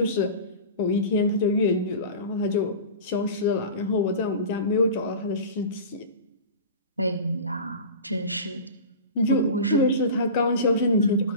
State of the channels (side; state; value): both; inverted; correlation -0.33